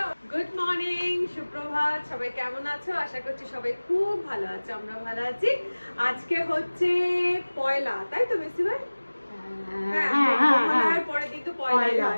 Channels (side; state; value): both; inverted; correlation -1.00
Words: গুড মর্নিং, সুপ্রভাত, সবাই কেমন আছো? আশা করছি সবাই খুব ভালো আছো, আমরা ভালো আছি। আজকে হচ্ছে পয়লা, তাই তো মেসি ভাই? পরের দিন তো